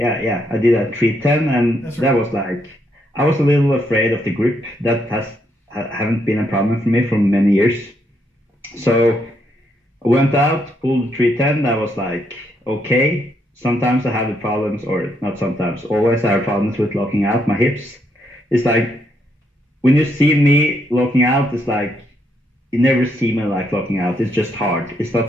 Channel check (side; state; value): both; normal; correlation 0.76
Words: did at 310, and that was like, I was a little afraid of the grip. That haven't been a problem for me for many years. So I went out, pulled the 310. I was like, okay. Sometimes I have the problems, or not sometimes, always I have problems with locking out my hips. It's like, when you see me locking out, it's like, you never see me like locking out. It's just hard. It's